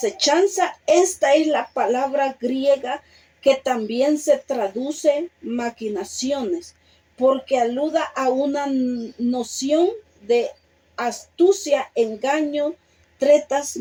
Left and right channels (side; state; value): both; identical; correlation 1.00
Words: esta es la palabra griega que también se traduce maquinaciones, porque aluda a una noción de astucia, engaño, tretas,